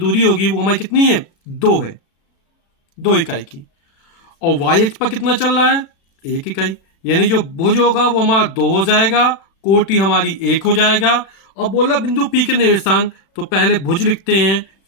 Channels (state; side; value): late; right; 36 ms